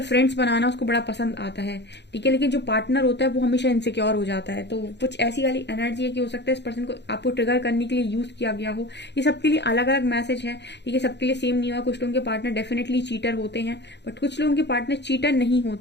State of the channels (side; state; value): right; late; 0.50 ms